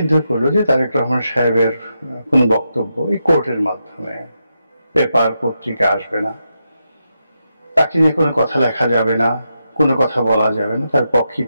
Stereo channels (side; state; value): both; inverted; correlation -0.86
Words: করলো যে তারেক রহমান সাহেবের কোনো বক্তব্য এই কোর্টের মাধ্যমে, পেপার পত্রিকা আসবে না, তাকে নিয়ে কোনো কথা লেখা যাবে না, কোনো কথা বলা যাবে না, তার পক্ষে